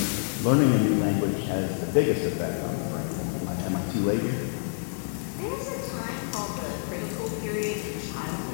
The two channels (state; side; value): silent; right; 60 dB below the other